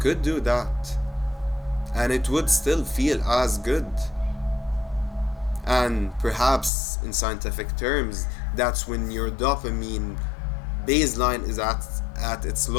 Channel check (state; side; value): drops out; right; at 6.7 s